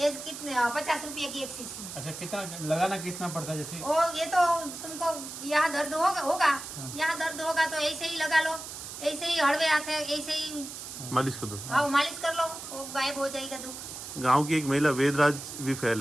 कितने 50 रुपये की एक शीशी है। अच्छा, कितना लगाना कितना पड़ता है? जैसे ओ, ये तो तुमको यहाँ दर्द होगा, यहाँ दर्द होगा तो ऐसे ही लगा लो, ऐसे ही हड़वे हाथ है, ऐसे ही मालिश कर दो। हाँ, मालिश कर लो, वो गायब हो जाएगा दुख। गांव की एक महिला वेदराज भी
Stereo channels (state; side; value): noise; right; hiss, 10 dB below the sound